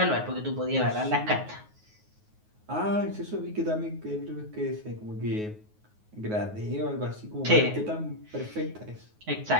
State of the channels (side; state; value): left; late; 9.4 ms